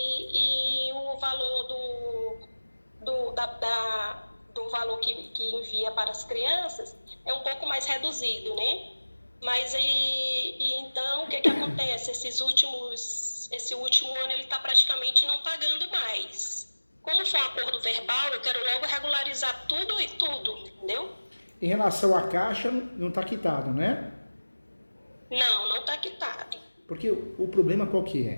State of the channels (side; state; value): both; inverted; correlation -1.00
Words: o valor do valor que envia para as crianças é um pouco mais reduzido, né? Mas então o que acontece? Esse último ano ele está praticamente não pagando mais. Como foi um acordo verbal, eu quero logo regularizar tudo e tudo, entendeu? Em relação à Caixa, não está quitado, né? Não está quitado. Porque o problema qual que